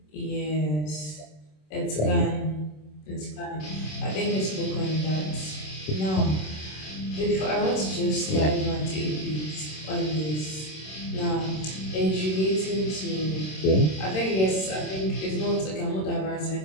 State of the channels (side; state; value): right; late; 26 ms